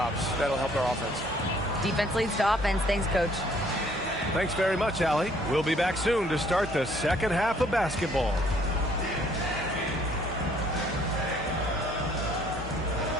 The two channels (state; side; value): normal; both; correlation 0.62